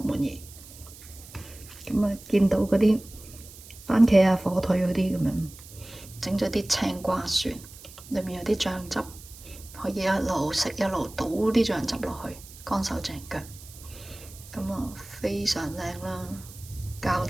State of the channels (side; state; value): right; noise; hiss, 18 dB below the sound